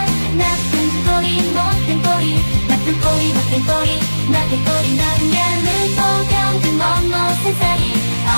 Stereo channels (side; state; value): both; inverted; correlation -1.00